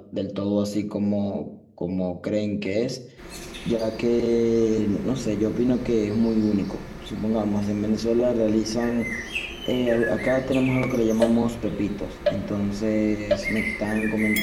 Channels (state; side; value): identical; both; correlation 1.00